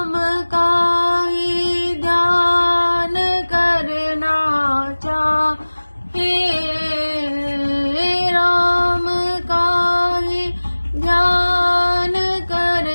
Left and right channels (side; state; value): both; inverted; correlation -1.00